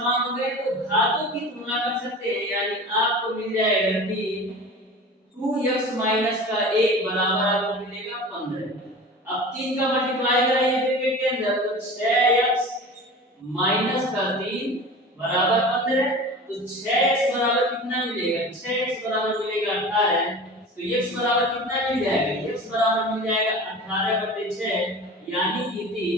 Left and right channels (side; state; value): both; normal; correlation 0.36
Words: हो गए तो घातों की तुलना कर सकते हैं, यानी आपको मिल जाएगा कि 2x माइनस का 1 बराबर आपको मिलेगा 15। अब 3 का मल्टीप्लाई कराइए ब्रैकेट के अंदर तो 6x माइनस का 3 बराबर 15, तो 6x बराबर कितना मिलेगा, 6x बराबर मिलेगा 18। तो x बराबर कितना मिल जाएगा, x बराबर मिल जाएगा 18/6 यानी कि